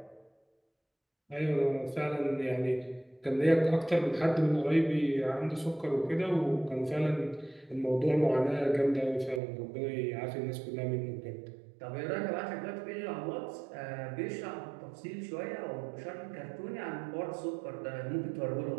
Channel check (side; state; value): left; drops out; at 9.4 s